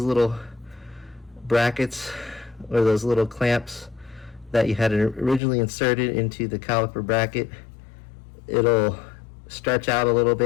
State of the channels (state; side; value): drops out; right; at 5.4 s